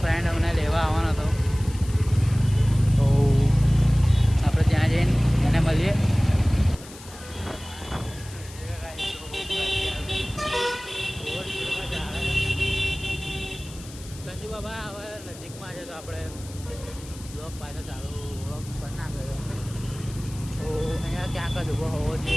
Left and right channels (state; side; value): noise; left; hiss, 18 dB below the sound